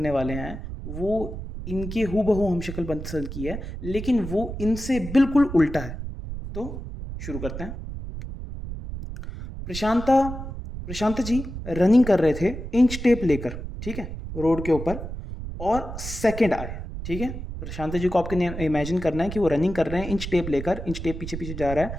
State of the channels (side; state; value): right; noise; rumble, 8 dB below the sound